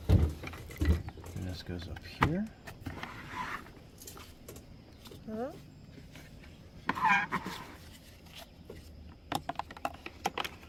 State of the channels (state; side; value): identical; both; correlation 1.00